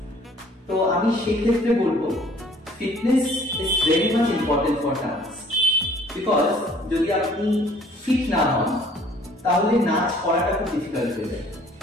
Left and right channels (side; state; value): both; normal; correlation 0.56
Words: তো আমি সেক্ষেত্রে বলবো fitness is very much important for dance, because যদি আপনি ফিট না হন তাহলে নাচ করাটা খুব ডিফিকাল্ট হয়ে যায়।